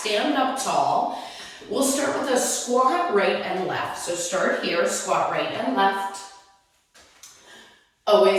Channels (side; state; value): both; identical; correlation 1.00